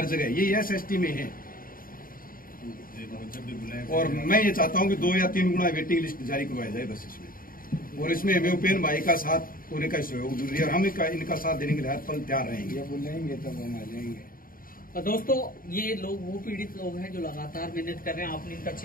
जगह, यही SST में है। और मैं ये चाहता हूँ कि 2 या 3 गुना वेटिंग लिस्ट जारी करवाया जाए बस इसमें। और इसमें हमें उपेन भाई का साथ होने का सहयोग जरूरी है और हम इनका साथ देने के लिए हर पल तैयार रहेंगे। बुलाएंगे तब हम आ जाएंगे। दोस्तों, ये लोग वो पीड़ित लोग हैं जो लगातार मेहनत कर रहे हैं। आपने इनका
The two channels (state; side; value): late; right; 0.41 ms